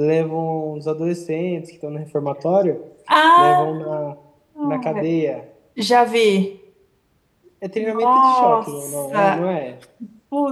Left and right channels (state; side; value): identical; both; correlation 1.00